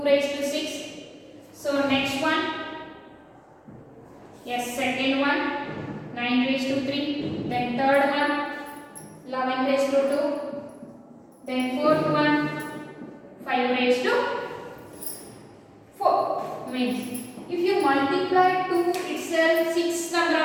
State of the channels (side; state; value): both; identical; correlation 1.00